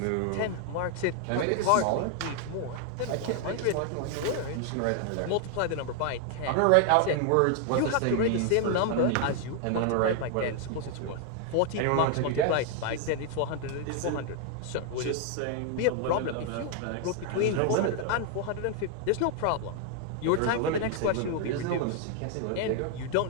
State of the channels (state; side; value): different; both; correlation 0.00